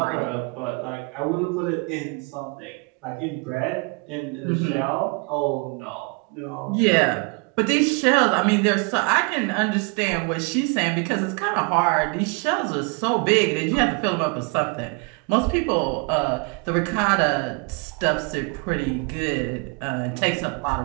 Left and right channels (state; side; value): quieter; left; 32.6 dB